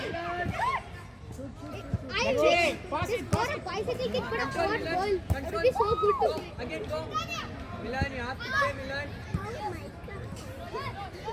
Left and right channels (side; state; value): both; identical; correlation 1.00